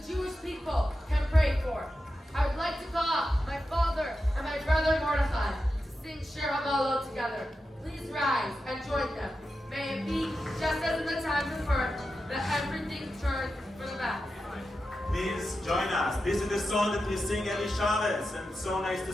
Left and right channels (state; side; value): normal; both; correlation 0.90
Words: Jewish people, can pray for. I would like to call up my father and my brother Mordechai to sing Shir HaMalot together. Please rise and join them. May it be just as in the times of earth that everything turns for the best. Please join us. This is the song that we sing every Shabbos, and it's so nice to